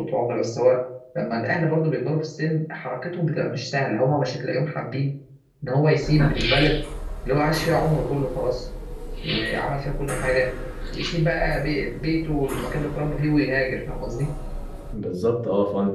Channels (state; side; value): identical; both; correlation 1.00